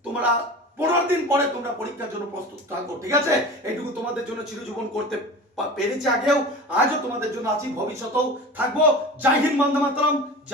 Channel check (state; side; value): normal; both; correlation 0.35